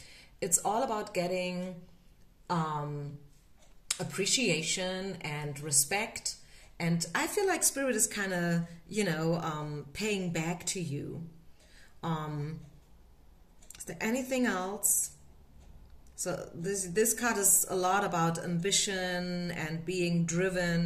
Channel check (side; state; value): both; identical; correlation 1.00